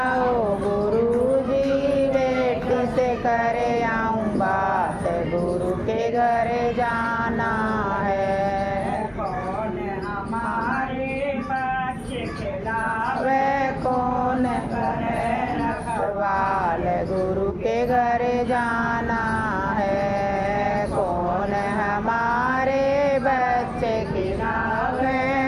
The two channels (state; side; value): identical; both; correlation 1.00